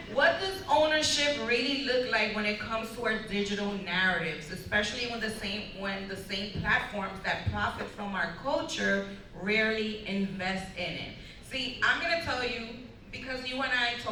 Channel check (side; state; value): both; identical; correlation 1.00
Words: what does ownership really look like when it comes to our digital narratives, especially when the same platforms that profit from our culture rarely invest in it? See, I'm gonna tell you, because you and I